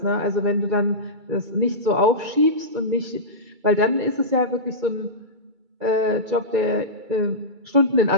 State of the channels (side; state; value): left; late; 2.3 ms